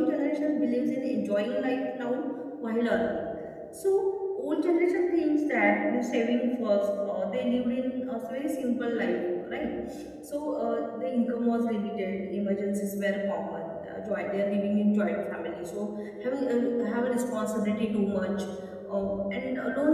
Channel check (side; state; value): both; identical; correlation 1.00